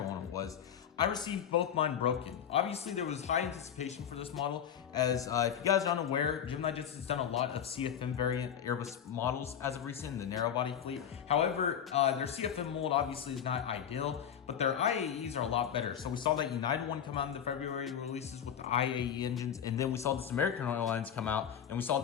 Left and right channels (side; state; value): right; quieter; 8.7 dB